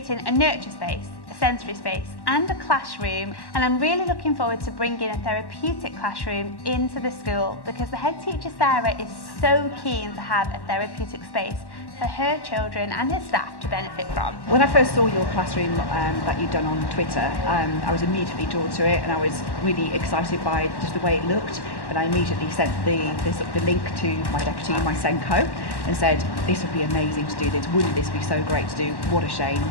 a nurture space, a sensory space and a classroom, and I'm really looking forward to bringing a therapeutic classroom into the school because the head teacher Sarah is so keen to have a therapeutic space for her children and her staff to benefit from. When I first saw your classroom that you'd done on Twitter, I was immediately drawn to it and I was really excited by just the way it looked, and I immediately sent the link to my deputy, my Senko, and said this would be amazing to do this, wouldn't this be so great to do, what a shame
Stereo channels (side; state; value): right; late; 1.1 ms